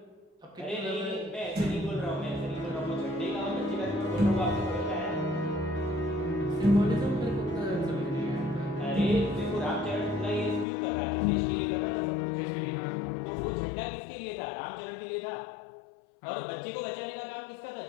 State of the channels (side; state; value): right; drops out; at 10.7 s